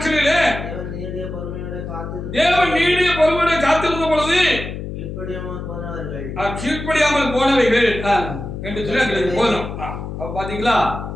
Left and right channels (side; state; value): left; noise; hum, 7 dB below the sound